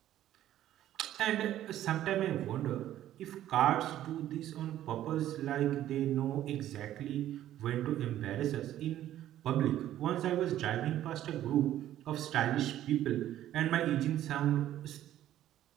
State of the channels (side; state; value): left; quieter; 12.6 dB